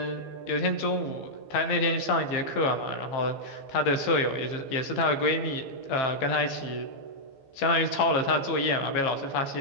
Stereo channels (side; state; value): right; late; 15 ms